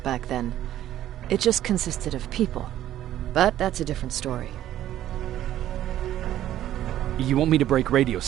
back then. It just consisted of people. But that's a different story. You want me to break radio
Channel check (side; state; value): left; quieter; 12.6 dB